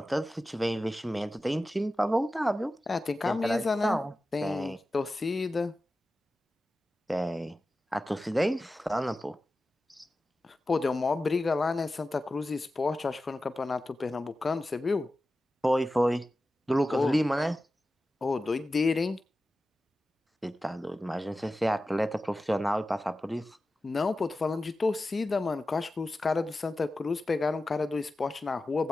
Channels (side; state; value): both; normal; correlation 0.94